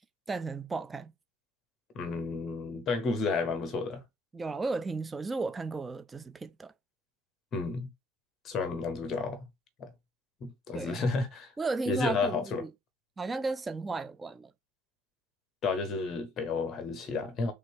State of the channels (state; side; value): normal; both; correlation 0.66